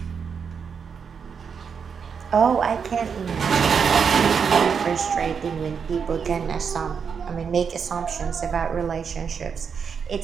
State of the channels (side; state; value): left; quieter; 6.4 dB